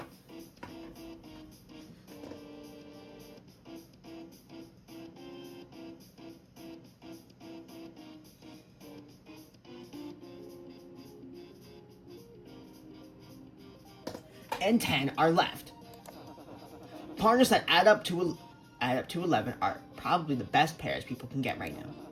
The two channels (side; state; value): both; identical; correlation 1.00